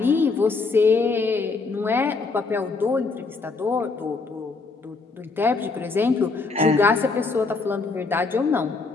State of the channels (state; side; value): quieter; right; 4.1 dB